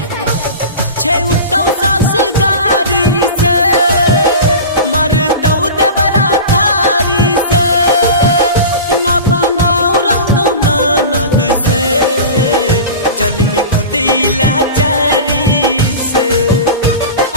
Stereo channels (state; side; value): inverted; both; correlation -0.32